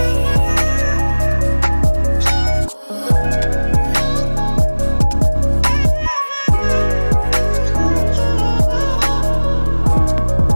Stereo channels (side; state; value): both; inverted; correlation -1.00